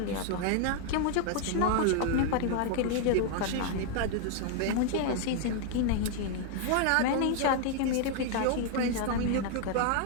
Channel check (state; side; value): different; both; correlation 0.00